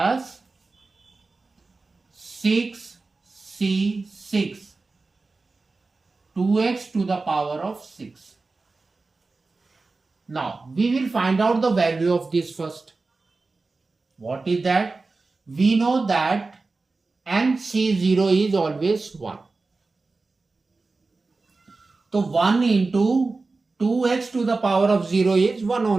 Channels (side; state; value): left; quieter; 3.7 dB